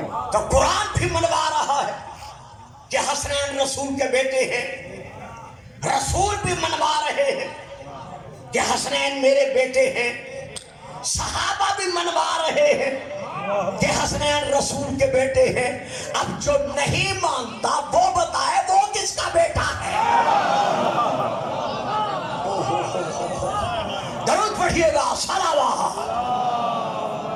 تو قرآن بھی منوا رہا ہے کہ حسنین رسول کے بیٹے ہیں، رسول بھی منوا رہے ہیں کہ حسنین میرے بیٹے ہیں، صحابہ بھی منوا رہے ہیں کہ حسنین رسول کے بیٹے ہیں۔ اب جو نہیں مانتا وہ بتائے وہ کس کا بیٹا ہے۔ درود پڑھیے گا، صلوات۔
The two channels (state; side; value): identical; both; correlation 1.00